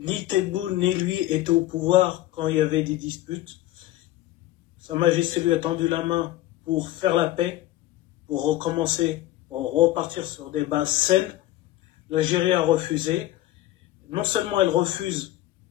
Tebboune ni lui étaient au pouvoir quand il y avait des disputes. Sa Majesté lui a tendu la main pour faire la paix, pour recommencer, pour repartir sur des bases saines. L'Algérie a refusé. Non seulement elle refuse,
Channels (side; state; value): right; quieter; 15.2 dB